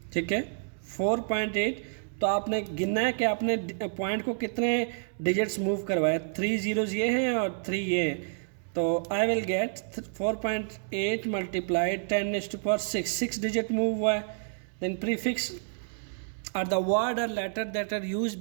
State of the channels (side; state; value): left; silent; 58 dB below the other